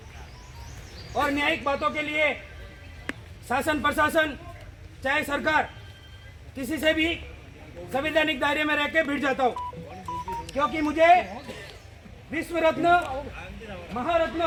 और न्यायिक बातों के लिए शासन प्रशासन चाहे सरकार किसी से भी संवैधानिक दायरे में रह के भिड़ जाता हूँ, क्योंकि मुझे विश्व रत्न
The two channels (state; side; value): identical; both; correlation 1.00